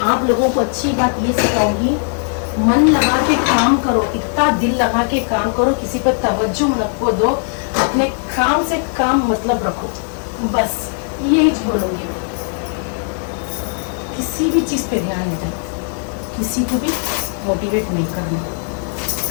आप लोगों को अच्छी बात ये सिखाऊंगी, मन लगा के काम करो, इतना दिल लगा के काम करो, किसी पर तवज्जो नको दो, अपने काम से काम मतलब रखो, बस यही बोलूंगी मैं। किसी भी चीज पे ध्यान नहीं देना, किसी को भी मोटिवेट नहीं करना,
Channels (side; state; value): right; silent; 56 dB below the other